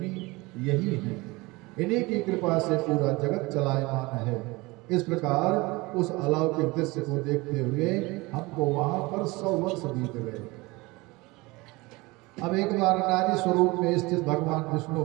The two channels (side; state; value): left; quieter; 23.2 dB